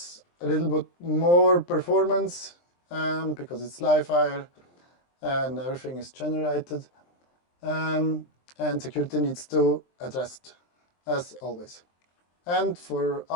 a little bit more performance because it's livewire and everything is generated. And security needs to address it, as always. And for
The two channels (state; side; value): late; right; 23 ms